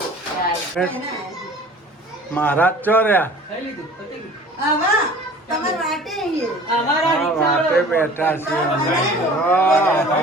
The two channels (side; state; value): both; normal; correlation 0.45